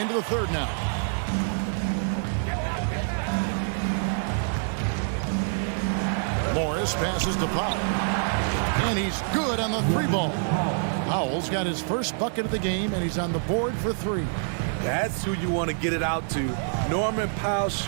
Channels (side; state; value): left; silent; 61 dB below the other